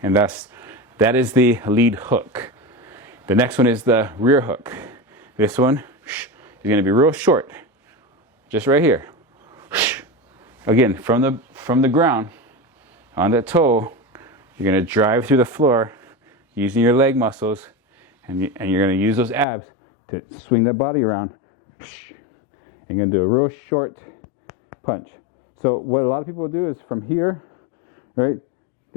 And that is the lead hook. The next one is the rear hook. This one is going to be real short. Just right here. Again, from the ground, on that toe, you're going to drive through the floor using your leg muscles, and you're going to use those abs to swing that body around. And you're going to do a real short punch. So what a lot of people do is from here, right,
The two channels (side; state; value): right; drops out; at 19.5 s